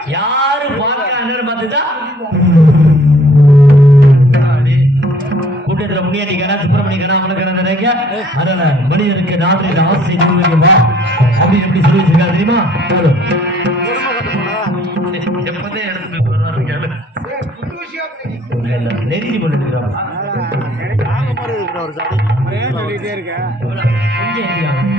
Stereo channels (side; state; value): both; normal; correlation 0.58